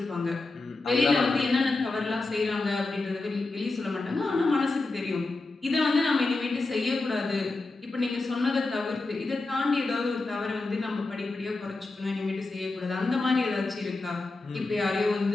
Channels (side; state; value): right; quieter; 3.4 dB